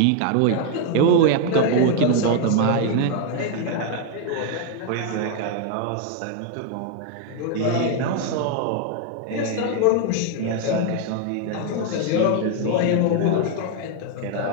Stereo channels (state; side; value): different; both; correlation 0.00